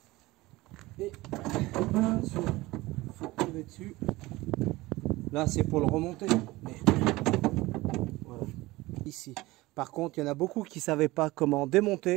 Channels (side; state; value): left; quieter; 19.8 dB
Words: et attention, faut tirer dessus. Là c'est pour le remonter, mais voilà. Ici par contre il y en a beaucoup qui savaient pas comment